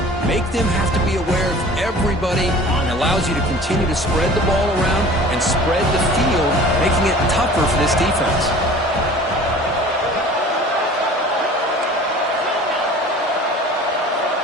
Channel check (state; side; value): normal; both; correlation 0.44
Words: Make them have to be aware of everybody, and allows you to continue to spread the ball around and spread the field, making it tougher for this defense.